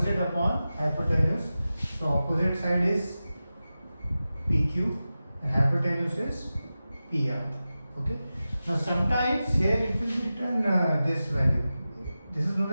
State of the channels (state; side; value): inverted; both; correlation -0.94